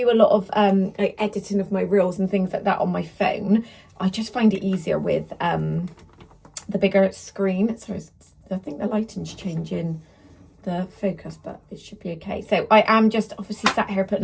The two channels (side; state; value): both; identical; correlation 1.00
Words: a lot of like editing of my reels and things like that on my phone. I just find it easier with the bigger screen. Sorry, I think the lighting's changing the focus, but it should be okay. So I am just obviously sat here putting